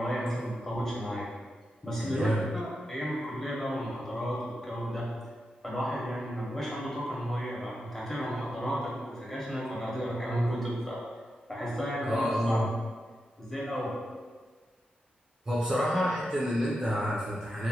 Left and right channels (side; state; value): both; normal; correlation 0.88